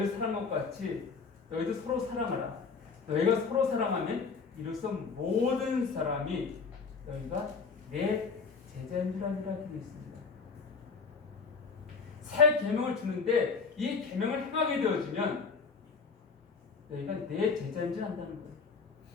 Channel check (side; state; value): right; quieter; 5.0 dB